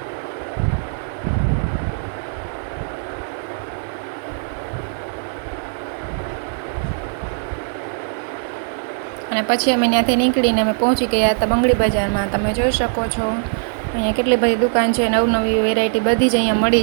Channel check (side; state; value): left; silent; 56 dB below the other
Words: અને પછી અમે ત્યાંથી નીકળીને અમે પહોંચી ગયા હતા બંગડી બજારમાં. તમે જોઈ શકો છો અહીંયા કેટલી બધી દુકાન છે, નવી વેરાયટી બધી જ અહીંયા